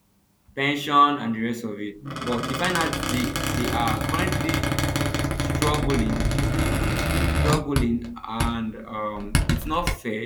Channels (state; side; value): identical; both; correlation 1.00